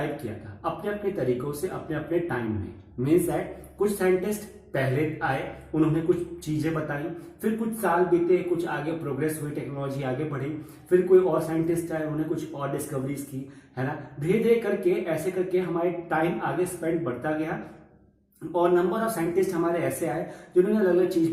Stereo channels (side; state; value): both; identical; correlation 1.00